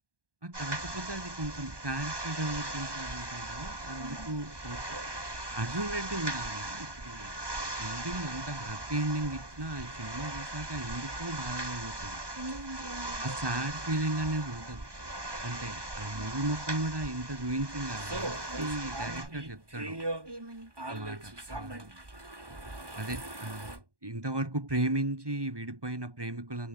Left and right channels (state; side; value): late; left; 1.2 ms